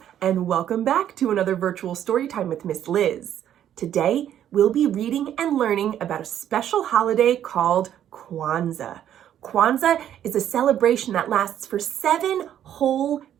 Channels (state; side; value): quieter; left; 10.6 dB